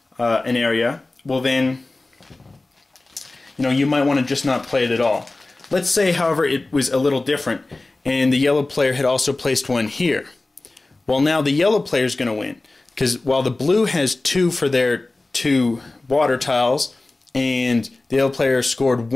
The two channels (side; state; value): right; quieter; 3.1 dB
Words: an area, well then you might want to just not play it at all. Let's say, however, it was a little different and the yellow player had also placed one here. Well, now the yellow player is going to win, because while the blue has 2 for their 2 water tiles and the yellow player scored